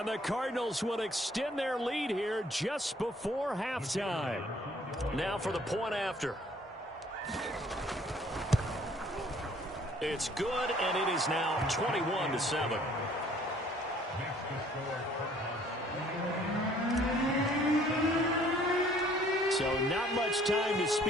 the Cardinals will extend their lead here just before halftime. Now for the point after. It's good, and it is now 21-7. So not much time to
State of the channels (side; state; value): both; normal; correlation 0.58